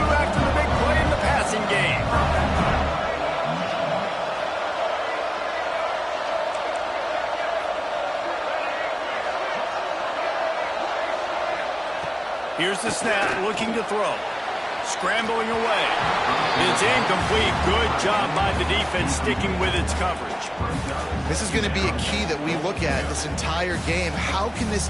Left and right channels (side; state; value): both; identical; correlation 1.00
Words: the big play in the passing game. Here's the snap, looking to throw. Scrambling away. It's incomplete. Good job by the defense sticking with its coverage. This is going to be a key that we look at this entire game. How can this